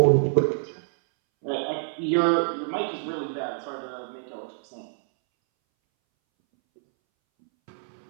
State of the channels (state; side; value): silent; left; 61 dB below the other